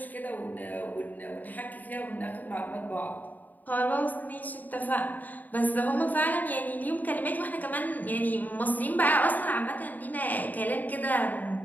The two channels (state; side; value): late; right; 0.083 ms